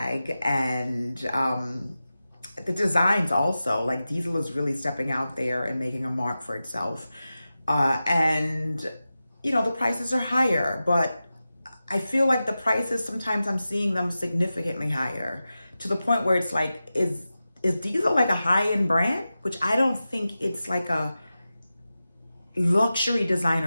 and the designs also. Like Diesel is really stepping out there and making a mark for itself. And, the prices are higher, but I feel like the prices, sometimes I'm seeing them significantly higher, to the point where it's like, is Diesel like a high-end brand? Which I don't think it's like a luxury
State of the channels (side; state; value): both; inverted; correlation -0.94